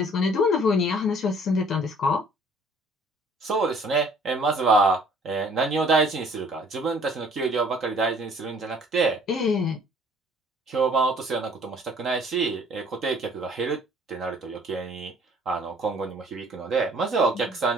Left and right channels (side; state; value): both; normal; correlation 0.56